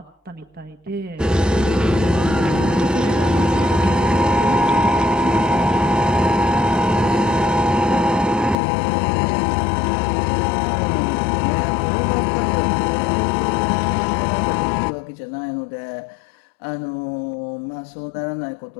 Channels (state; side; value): drops out; right; at 8.6 s